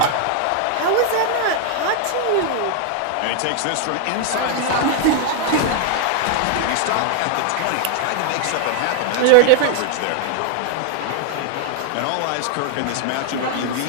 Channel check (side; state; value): both; different; correlation 0.00